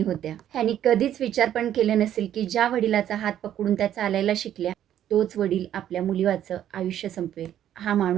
होत्या. ह्यांनी कधीच विचार पण केलं नसेल, की ज्या वडिलाचा हात पकडून त्या चालायला शिकल्या, तोच वडील आपल्या मुलीवाचं आयुष्य संपवेल. हा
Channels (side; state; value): left; quieter; 11.0 dB